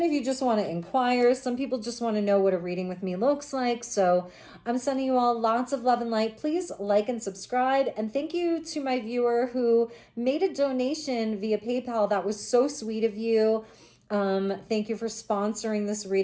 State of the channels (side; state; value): both; identical; correlation 1.00